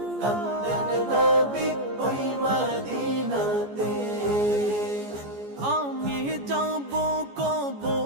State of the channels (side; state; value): left; late; 14 ms